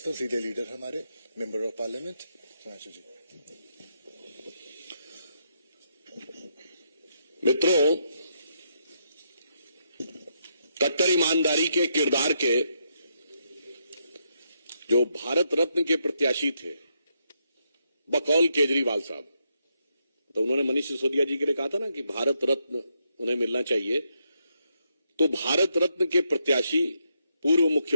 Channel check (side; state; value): both; inverted; correlation -0.79